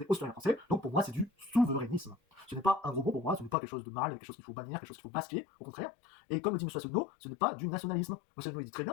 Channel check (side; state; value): right; drops out; at 3.6 s